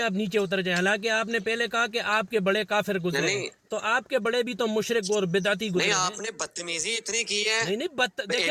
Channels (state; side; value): identical; both; correlation 1.00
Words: آپ نیچے اتر جائیں، حالانکہ آپ نے پہلے کہا کہ آپ کے بڑے کافر گزرے ہیں، نہیں تو آپ کے بڑے بھی تو مشرک اور بدعتی نہیں گزرے ہیں۔ آپ نے بدتمیزی اتنی کی ہے نہیں نہیں اے